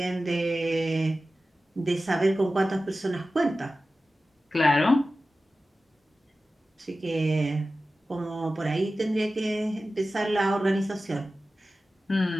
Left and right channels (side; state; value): both; normal; correlation 0.95